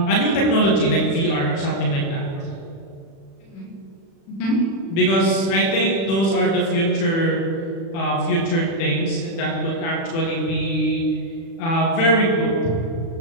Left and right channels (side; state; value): right; late; 36 ms